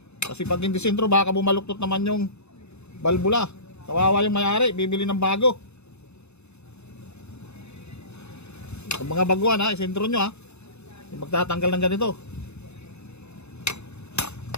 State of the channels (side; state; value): right; late; 0.81 ms